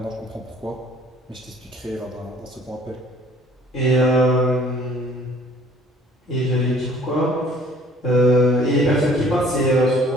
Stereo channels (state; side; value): normal; both; correlation 0.54